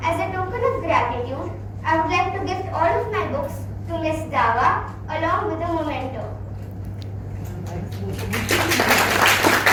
as a token of gratitude, I would like to gift all of my books to Miss Dawa along with a memento.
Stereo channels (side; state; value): both; identical; correlation 1.00